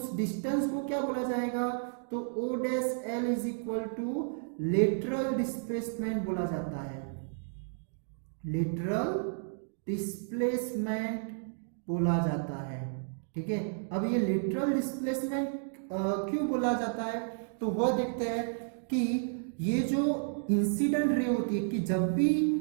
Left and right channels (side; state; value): left; silent; digital silence